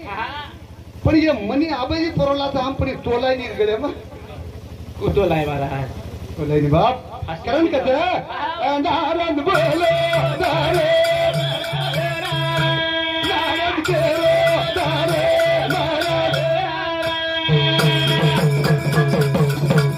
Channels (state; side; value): identical; both; correlation 1.00